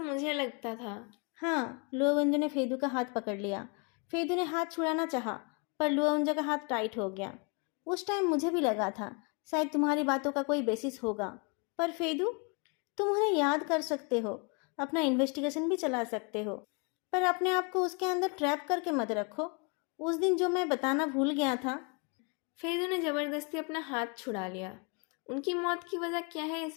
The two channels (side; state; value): right; quieter; 33.8 dB